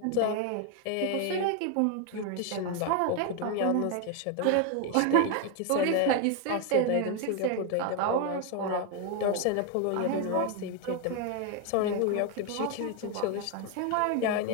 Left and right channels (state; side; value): different; both; correlation 0.01